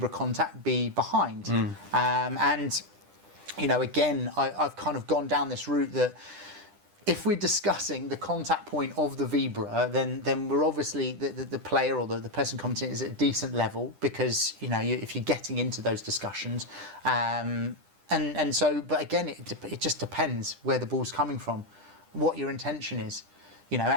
contact be behind? And again, I've kind of gone down this route that if we're discussing the contact point of the Vibra, then we're obviously the player or the person commenting is at a decent level, because if you're getting into those discussions, and so, but again, it just depends where the ball's coming from, what your intention is,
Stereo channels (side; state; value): left; late; 10 ms